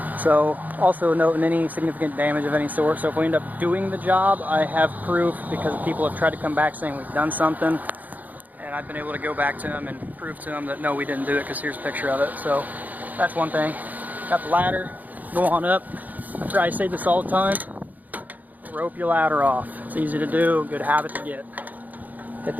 So also noting any significant damage of any sort, so if we end up doing the job, I have proof because people have tried to come back saying we've done something, and I've been able to go back to them and prove to them that no, we didn't do it, because here's a picture of it. So that's one thing. Got the ladder, go on up. I say this all the time, rope your ladder off. It's easy to do, good habit to get. At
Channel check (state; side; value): late; left; 0.081 ms